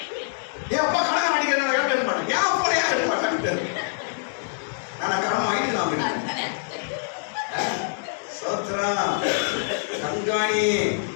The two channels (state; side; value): silent; right; digital silence